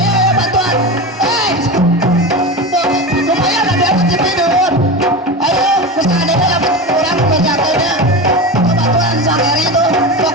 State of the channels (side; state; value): both; normal; correlation 0.24